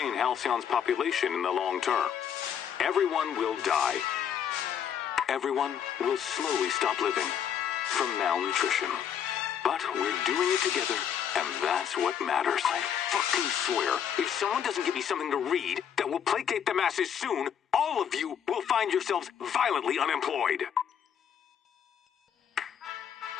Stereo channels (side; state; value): right; quieter; 8.6 dB